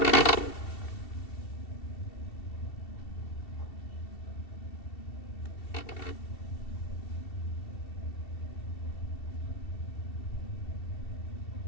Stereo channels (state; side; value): late; right; 2.7 ms